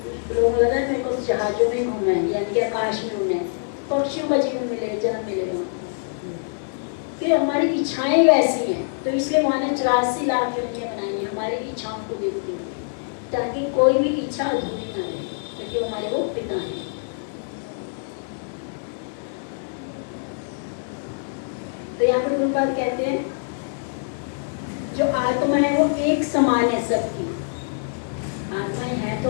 लोग लगा मेरे को जहाजों में घूमना है, यानी कि आकाश में घूमना है, पक्षियों का जीवन मिलेगा, जन्म मिलेगा। फिर हमारी इच्छाएं वैसी हैं, तो इसलिए वहाँ ने 84 लाख योनियां बनाई हैं हमारी इच्छाओं को देखते हुए, ताकि कोई भी इच्छा अधूरी ना रहे, क्योंकि हमारे वो पिता हैं। तो यहाँ पर गुरुपाद कहते हैं जो आत्मा है वो एक समान है सबकी। आत्माएं हैं तो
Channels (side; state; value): right; silent; 62 dB below the other